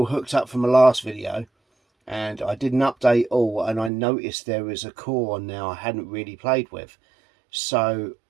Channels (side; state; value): left; drops out; at 3.9 s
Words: hooked up from the last video, and I did an update all, and I noticed there was a core on now I hadn't really played with. So